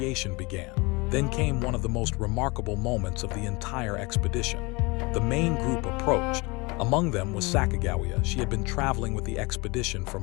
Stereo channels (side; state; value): right; quieter; 26.1 dB